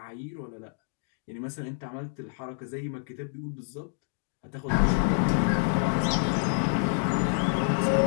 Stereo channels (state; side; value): silent; right; digital silence